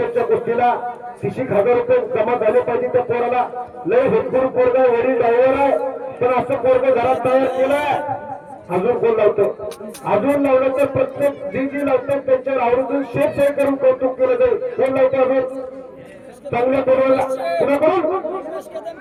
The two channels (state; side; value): identical; both; correlation 1.00